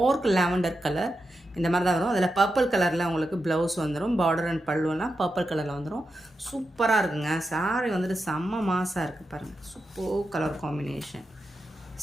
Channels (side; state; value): both; normal; correlation 0.88